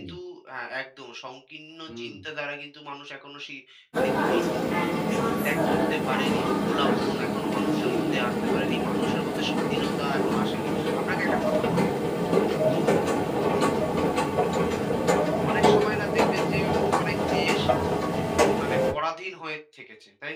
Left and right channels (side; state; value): both; identical; correlation 1.00